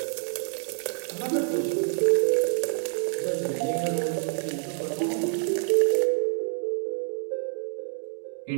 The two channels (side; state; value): left; silent; 60 dB below the other